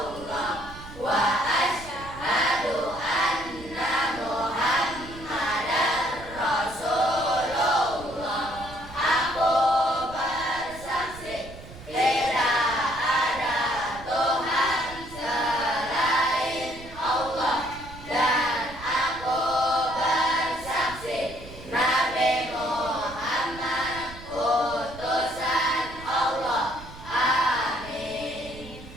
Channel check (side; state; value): right; noise; rumble, 16 dB below the sound